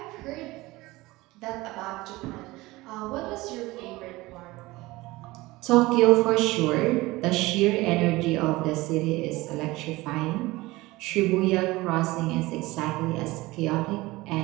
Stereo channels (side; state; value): left; quieter; 20.2 dB